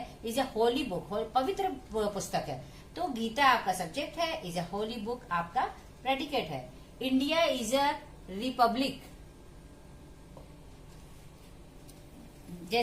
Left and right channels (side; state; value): both; identical; correlation 1.00